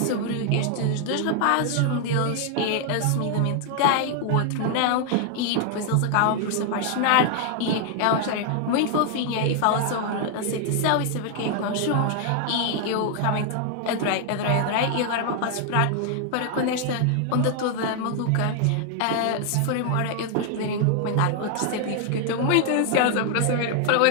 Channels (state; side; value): different; both; correlation 0.00